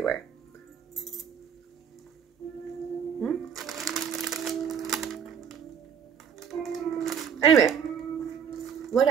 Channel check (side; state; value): left; quieter; 7.5 dB